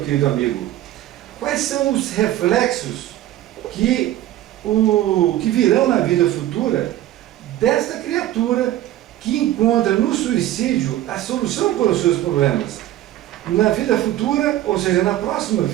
querido amigo, quais são os reflexos que virão na vida futura desta criatura que encontra no suicídio a solução para os seus problemas? Na vida futura, ou seja, na próxima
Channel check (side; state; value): left; quieter; 13.7 dB